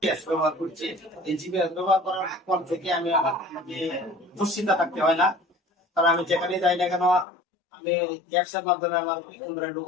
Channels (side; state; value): right; drops out; at 7.2 s